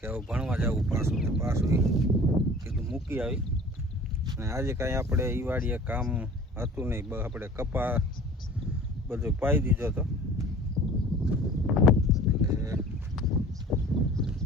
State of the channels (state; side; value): normal; both; correlation 0.45